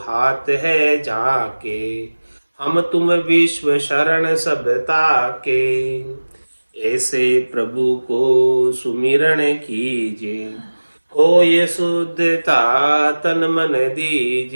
हाथ है जाके, हम तुम विश्व शरण सब ताके, ऐसे प्रभु को सुमिरण कीजे, हो ये शुद्धता तन मन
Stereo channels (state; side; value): inverted; both; correlation -1.00